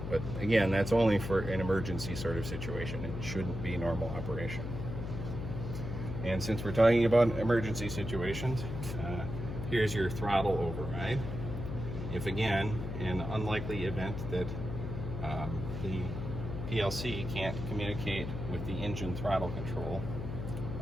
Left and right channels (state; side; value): noise; left; hum, 5 dB below the sound